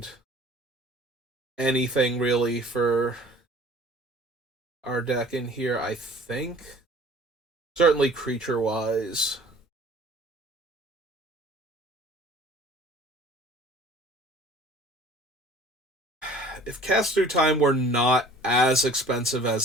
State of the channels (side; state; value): both; normal; correlation 0.49